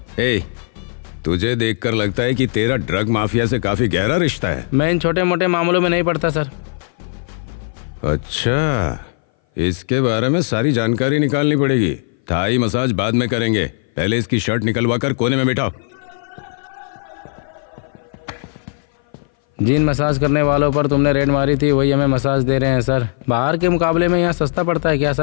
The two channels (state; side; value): silent; right; 59 dB below the other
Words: ए, तुझे देखकर लगता है कि तेरा ड्रग माफिया से काफी गहरा रिश्ता है। मैं इन छोटे मोटे मामलों में नहीं पड़ता सर। अच्छा, इसके बारे में सारी जानकारी निकालनी पड़ेगी। थाई मसाज बाद में करेंगे, पहले इसकी शर्ट निकलवा कर कोने में बैठाओ। जिन मसाज करने वालों पर तुमने रेड मारी थी वही हमें मसाज दे रहे हैं सर। बाहर के मुकाबले में यहाँ सस्ता पड़ता है क्या